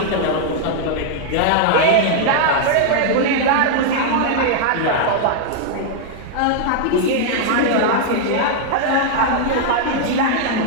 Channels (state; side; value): different; both; correlation -0.01